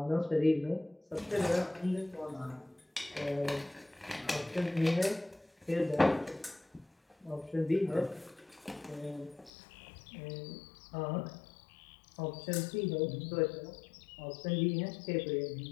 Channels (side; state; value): right; drops out; at 9.5 s